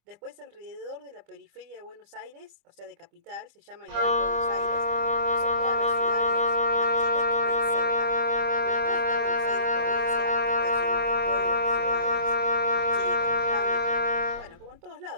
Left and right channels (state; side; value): late; left; 25 ms